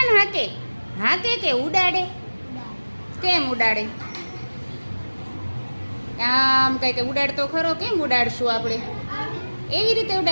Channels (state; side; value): inverted; both; correlation -1.00